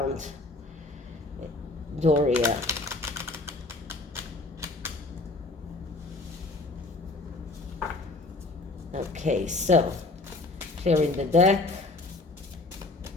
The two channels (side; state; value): right; quieter; 3.2 dB